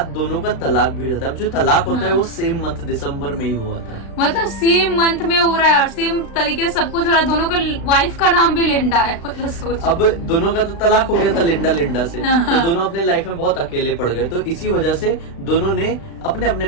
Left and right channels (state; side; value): late; right; 36 ms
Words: दोनों का तलाक भी हो जाता है। अब जो तलाक होता है वो सेम मंथ दिसंबर में ही हुआ था। मतलब सेम मंथ में हो रहा है और सेम तरीके से सब कुछ हो रहा है। दोनों का वाइफ का नाम भी लिंडा है। मतलब सोच, अब दोनों का तो तलाक हो गया था लिंडा से, तो दोनों अपने लाइफ में बहुत अकेले पड़ गए। तो इसी वजह से दोनों ने अपने अपने